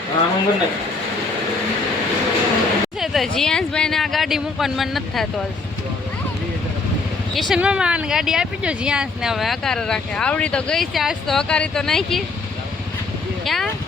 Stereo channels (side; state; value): right; quieter; 3.9 dB